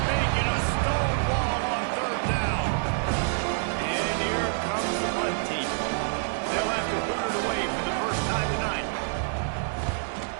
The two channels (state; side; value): silent; left; digital silence